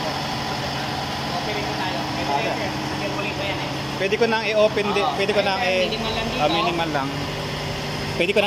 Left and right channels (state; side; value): identical; both; correlation 1.00